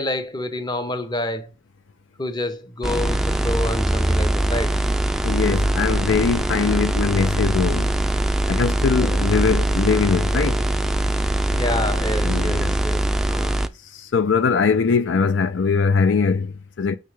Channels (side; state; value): both; normal; correlation 0.67